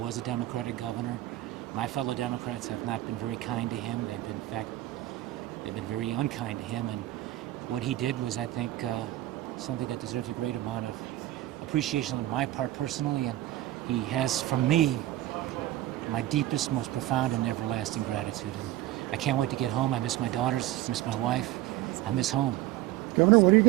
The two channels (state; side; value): quieter; left; 15.1 dB